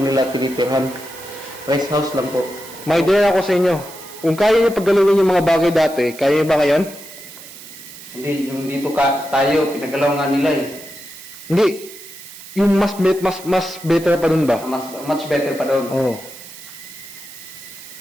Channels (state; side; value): noise; right; hiss, 16 dB below the sound